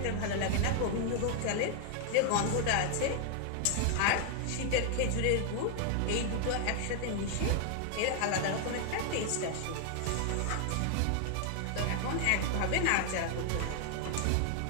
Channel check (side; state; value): both; different; correlation 0.00